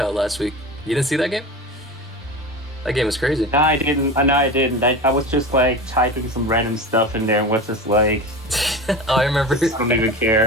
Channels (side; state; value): both; normal; correlation 0.29